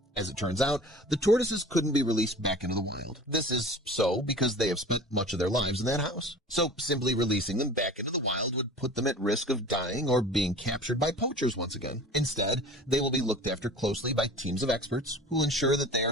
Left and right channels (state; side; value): normal; both; correlation 0.40